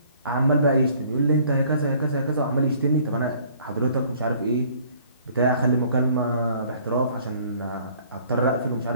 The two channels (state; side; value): inverted; both; correlation -0.57